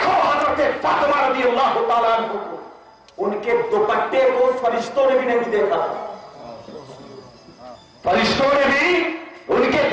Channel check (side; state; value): both; identical; correlation 1.00